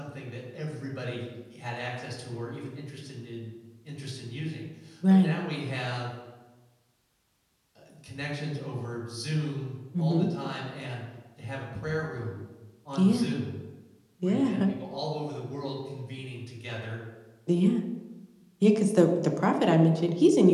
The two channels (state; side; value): identical; both; correlation 1.00